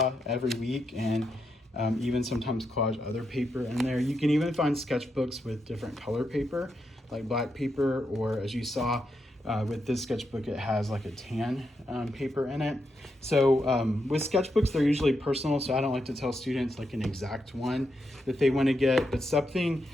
every week and even sometimes collage other paper in there. You can even find sketchbooks with different color paper, like black paper, or as you saw with this sketchbook, it has like a tan paper in it. So with sketchbooks, they're usually personal, so I don't like to tell students like an exact one that they want to get, but something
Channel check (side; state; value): both; normal; correlation 0.83